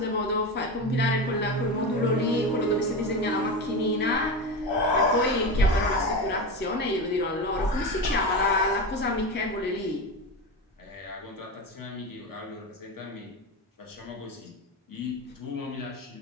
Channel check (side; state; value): both; normal; correlation 0.21